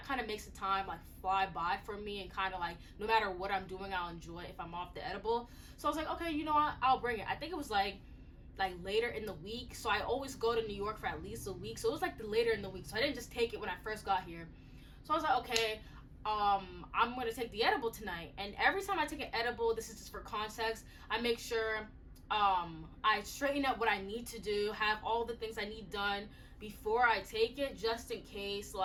kind of makes the time like fly by for me, and kind of like no matter what I'm doing, I'll enjoy it if I'm off the edible. So I was like, okay, you know what, I'll bring it. I think it was like later in the week, so I always go to New York for at least a week, so it was like the later in the week, so I didn't just take it when I first got here. So I was like, okay, I'm gonna take the edible tonight. And every time I take an edible, this is just for context, I make sure I straighten up what I need to do, have all the things I need done before I take it, just in case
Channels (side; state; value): both; identical; correlation 1.00